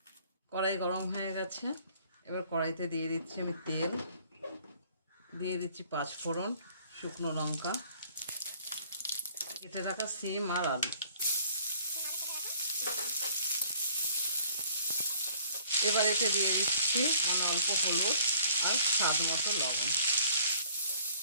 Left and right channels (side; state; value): both; inverted; correlation -0.56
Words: কড়াই গরম হয়ে গেছে, এবার কড়াইতে দিয়ে দিচ্ছি আমি তেল, দিয়ে দিচ্ছি 5 ফোড়ন, শুকনো লঙ্কা, কেটে রাখা সিম আর আলু। এবার এতে দিয়ে দিচ্ছি অল্প হলুদ আর স্বাদ মতো লবণ।